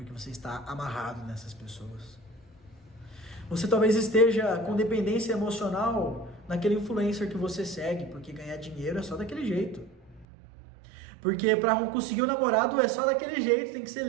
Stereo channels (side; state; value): left; drops out; at 10.2 s